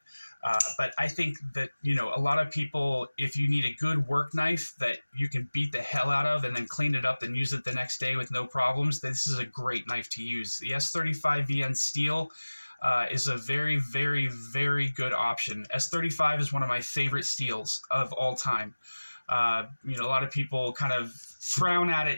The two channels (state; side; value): inverted; both; correlation -1.00